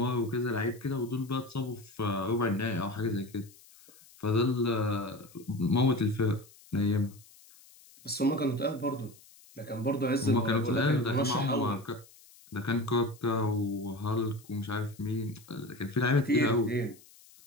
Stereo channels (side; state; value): left; noise; hiss, 24 dB below the sound